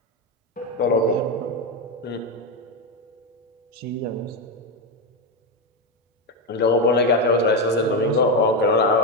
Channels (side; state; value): both; normal; correlation 0.10